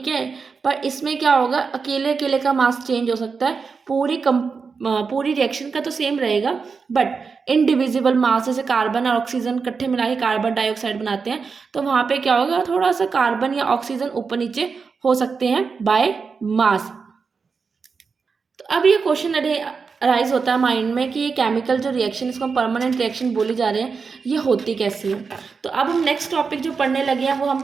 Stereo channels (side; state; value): left; quieter; 5.2 dB